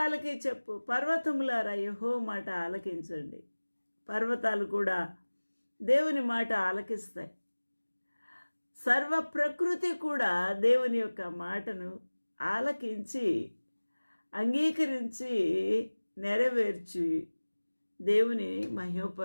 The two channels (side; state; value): both; inverted; correlation -1.00